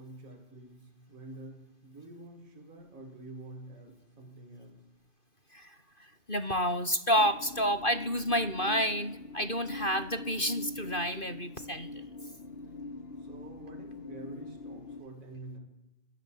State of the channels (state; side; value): late; right; 2.5 ms